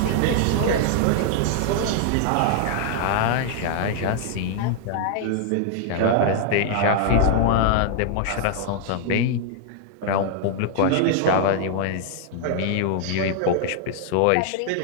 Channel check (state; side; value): different; both; correlation 0.00